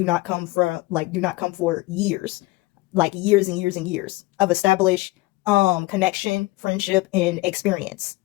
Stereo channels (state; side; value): quieter; right; 21.2 dB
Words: not come for years. Like years and years and years of established connection, friendship, and experience.